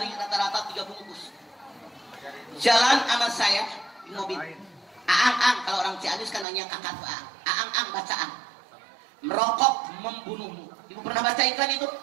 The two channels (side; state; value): left; drops out; at 6.5 s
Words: rata-rata 3 bungkus. Jalan sama saya di mobil. Aang-ang, kalau orang Ciamis kan nanya kakak tuh aang. Aang-ang bacaan. Merokok membunuhmu. Ibu pernah baca iklan itu?